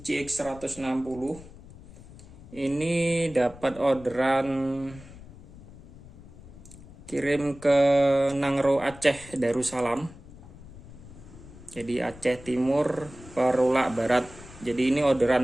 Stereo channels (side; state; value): left; noise; rumble, 18 dB below the sound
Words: 160. Ini dapat orderan kirim ke Nangro Aceh Darussalam. Jadi Aceh Timur Perulak Barat. Jadi ini